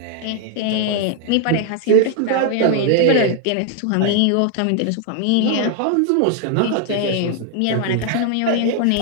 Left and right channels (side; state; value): both; different; correlation 0.00